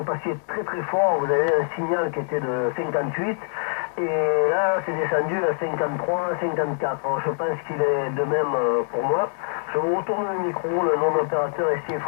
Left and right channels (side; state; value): right; silent; 62 dB below the other